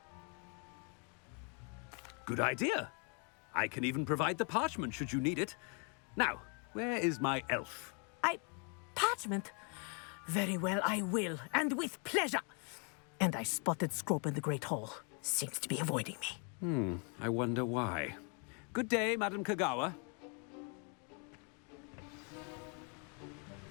Good idea. I can even provide the parchment should you need it. Now, where is my elf? Parchment? Very well, I will, and with pleasure. And I spotted Scrope in the Great Hall. Seems to be avoiding me. I wonder why. Good day, Madam Kogawa.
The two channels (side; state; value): right; quieter; 37.4 dB